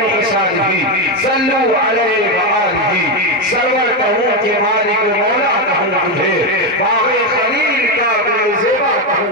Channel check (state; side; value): normal; both; correlation 0.08